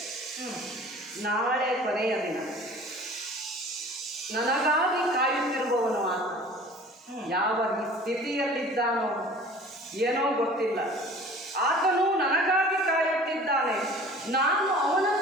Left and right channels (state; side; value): normal; both; correlation 0.45